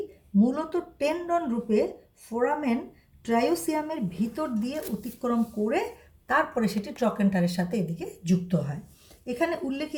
মূলত টেন্ডন রূপে ফোরামেন ট্রায়োসিয়ামের ভিতর দিয়ে অতিক্রম করে তারপরে সেটি ট্রকেন্টারের সাথে এদিকে যুক্ত হয়। এখানে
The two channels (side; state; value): both; identical; correlation 1.00